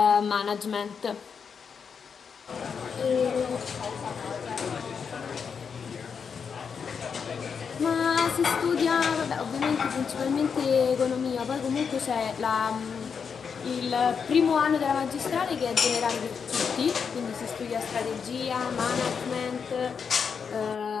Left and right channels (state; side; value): quieter; right; 6.3 dB